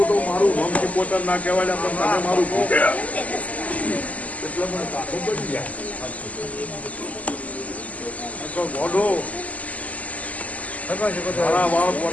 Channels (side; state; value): right; late; 0.073 ms